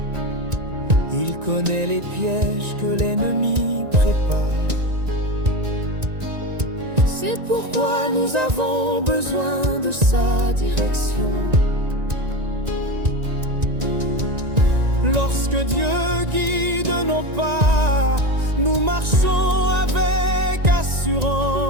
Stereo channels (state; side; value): late; left; 1.9 ms